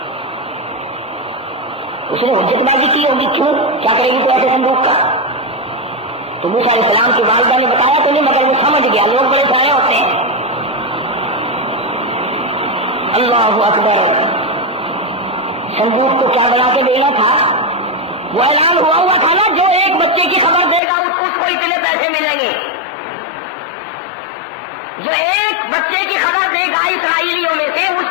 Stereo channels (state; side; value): drops out; right; at 20.8 s